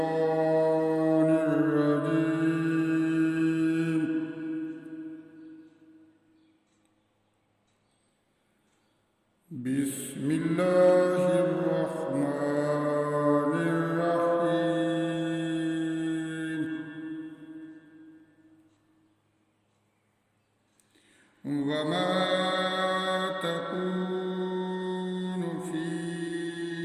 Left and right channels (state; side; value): identical; both; correlation 1.00